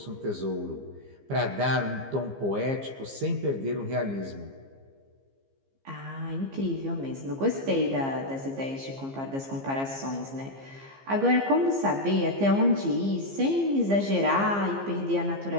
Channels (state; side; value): late; left; 15 ms